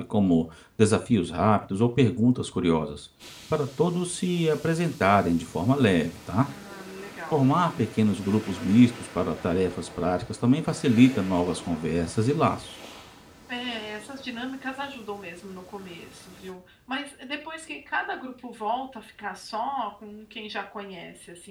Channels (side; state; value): both; identical; correlation 1.00